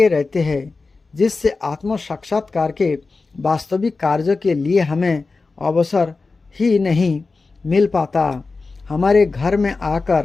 रहते हैं जिससे आत्म साक्षात्कार के वास्तविक कार्य के लिए हमें अवसर ही नहीं मिल पाता। हमारे घर में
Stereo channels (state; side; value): quieter; right; 4.0 dB